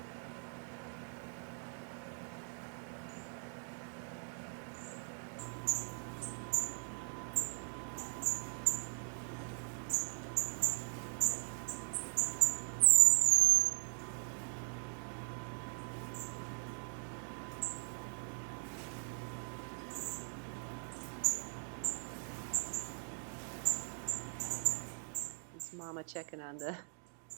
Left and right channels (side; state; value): left; silent; 51 dB below the other